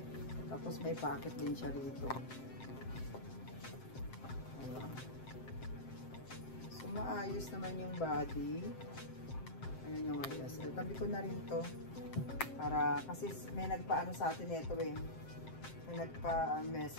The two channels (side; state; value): right; late; 7.6 ms